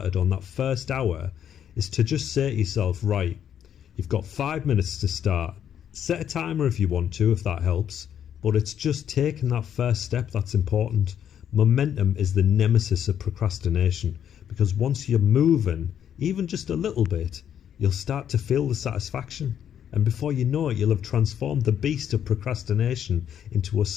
on that first hour, is to just say to yourself, right, you've got 5 minutes to start. Set a timer if you want to, if that helps. But it's just taking that first step that's important. Momentum is the nemesis of procrastination, because once you're moving, even just a little bit, you'll start to feel the satisfaction. And before you know it, you'll have transformed the beast of procrastination into a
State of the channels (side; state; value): right; quieter; 9.4 dB